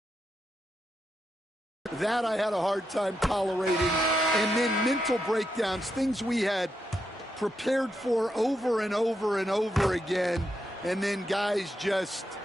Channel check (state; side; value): normal; both; correlation 0.83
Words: that I had a hard time tolerating. And then mental breakdowns, things we had prepared for over and over and over again, and then guys just